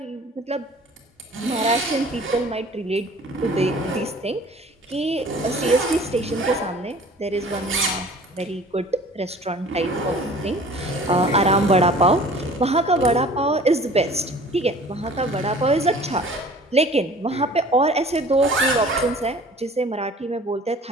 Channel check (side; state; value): both; normal; correlation 0.47